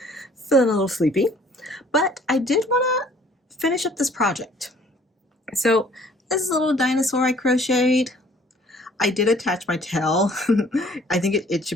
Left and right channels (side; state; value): both; normal; correlation 0.56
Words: feeling a little sleepy. But I did want to finish up this project. So this is a little dinosaur I crocheted. I did attach my tail. I think it